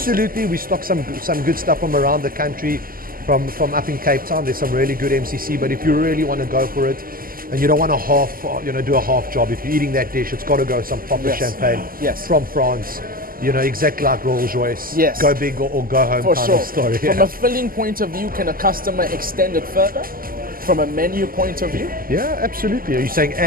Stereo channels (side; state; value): left; late; 0.42 ms